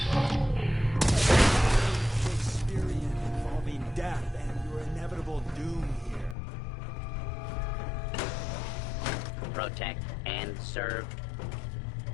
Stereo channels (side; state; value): right; drops out; at 6.4 s